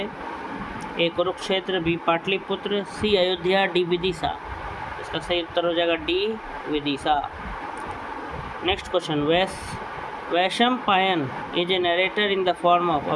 A Kurukshetra, B Pataliputra, C Ayodhya, D Vidisha. इसका सही उत्तर हो जाएगा D Vidisha. Next question, Vaishampayan is a narrator in the form of a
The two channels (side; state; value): both; identical; correlation 1.00